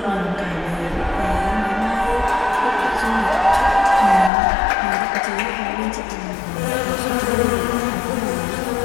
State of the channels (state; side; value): drops out; right; at 4.3 s